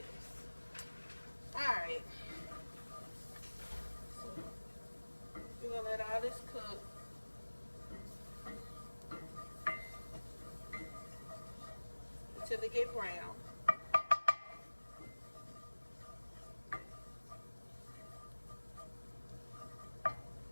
Alright. So, we're going to let all this cook. Until they get brown.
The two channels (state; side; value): inverted; both; correlation -1.00